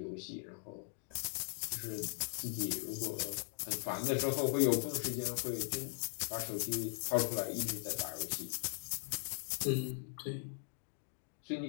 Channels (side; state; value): right; silent; digital silence